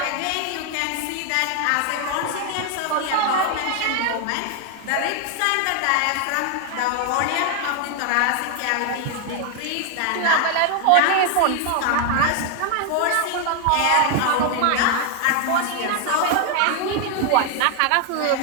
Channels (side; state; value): both; different; correlation 0.00